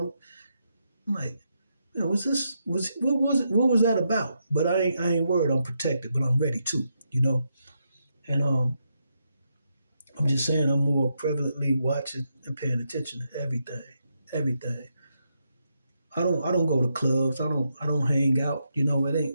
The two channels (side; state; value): both; inverted; correlation -0.82